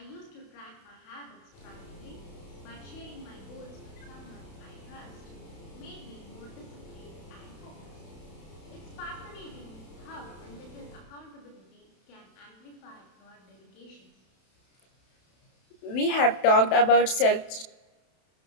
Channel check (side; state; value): right; late; 32 ms